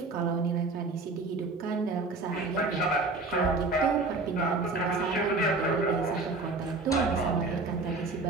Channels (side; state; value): left; quieter; 3.5 dB